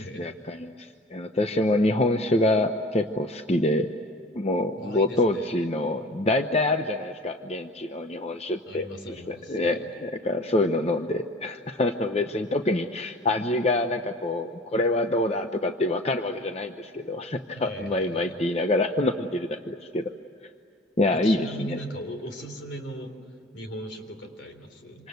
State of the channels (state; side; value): normal; both; correlation 0.43